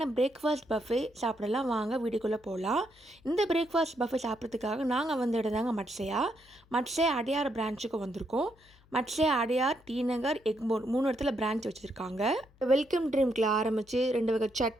பிரேக்ஃபாஸ்ட் பஃபே சாப்பிடலாம். வாங்க வீடியோக்குள்ளே போகலாம். இந்த பிரேக்ஃபாஸ்ட் பஃபே சாப்பிட்றதுக்காக நாங்கள் வந்த இடம் தாங்க மட்சையா. மட்சையா அடையார் பிரான்ச்சுக்கு வந்திருக்கோம். மட்சையா, அடையார், டி நகர், எக்மோர் 3 இடத்துல பிரான்ச் வச்சுருக்காங்க. வெல்கம் ட்ரிங்க்கில் ஆரம்பித்து 2 வகை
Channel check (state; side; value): noise; left; hum, 29 dB below the sound